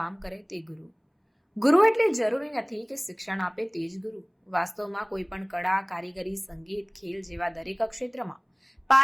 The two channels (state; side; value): identical; both; correlation 1.00